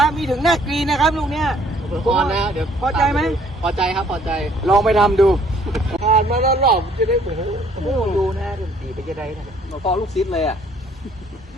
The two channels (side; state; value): both; normal; correlation 0.61